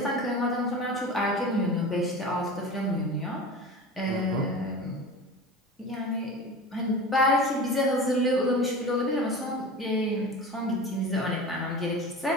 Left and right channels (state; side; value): normal; both; correlation 0.33